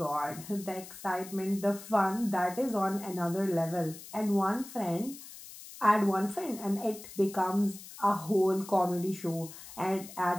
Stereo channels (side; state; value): left; noise; hiss, 15 dB below the sound